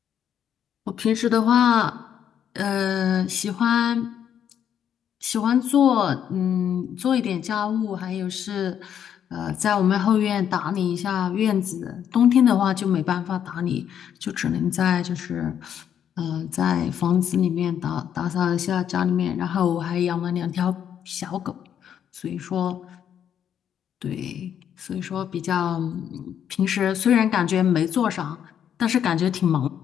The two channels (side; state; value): right; quieter; 9.1 dB